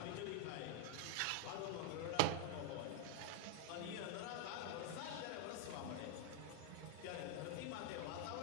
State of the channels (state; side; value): different; both; correlation 0.01